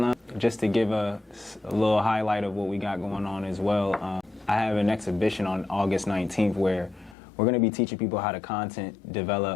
just to give a little highlight of what we got going on as well, I have an exhibition on August 19th where we're going to be teaching people how to content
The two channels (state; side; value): drops out; right; at 7.2 s